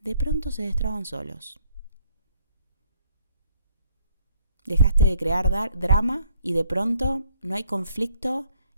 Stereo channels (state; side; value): inverted; both; correlation -0.66